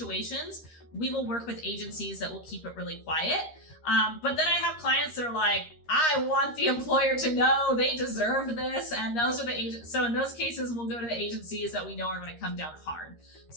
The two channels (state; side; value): late; right; 13 ms